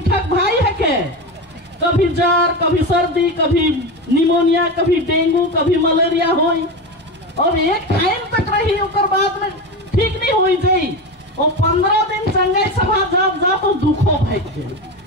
भाई है के, कभी जार, कभी सर्दी, कभी निमोनिया, कभी डेंगू, कभी मलेरिया होई और एक टाइम तक रही ओकर बाद में ठीक नहीं हुई जाई। और 15 दिन चंगाई सभा जब जा तो दुखो भाई के।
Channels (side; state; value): both; normal; correlation 0.21